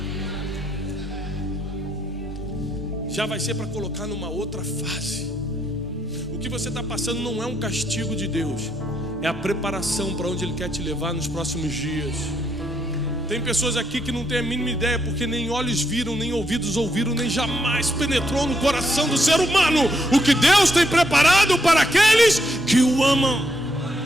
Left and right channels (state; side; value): normal; both; correlation 0.76